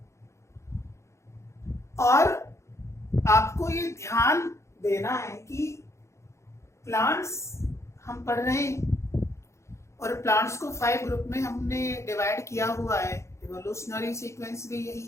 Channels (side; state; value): right; late; 0.14 ms